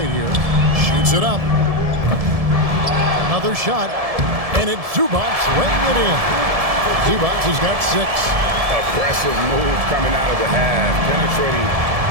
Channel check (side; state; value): left; late; 1.7 ms